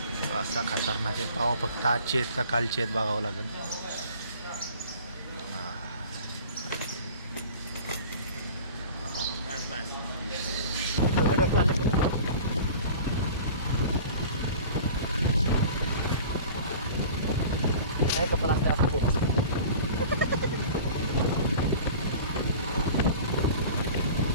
असा खतरनाक आहे. पावा फक्त आजचे आहेत का कालचे आहेत बघावं लागेल. काय कपडा असते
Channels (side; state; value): both; inverted; correlation -0.41